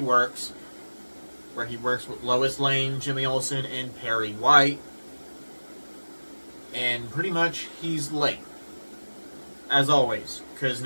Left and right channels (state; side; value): inverted; both; correlation -1.00